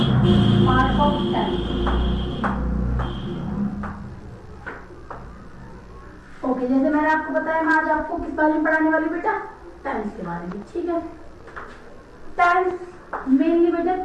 part of tense. Okay, जैसे मैंने आपको बताया, मैं आज आपको किस बारे में पढ़ाने वाली बेटा, टेंस के बारे में, ठीक है। टेंस मेनली बेटा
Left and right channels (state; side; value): identical; both; correlation 1.00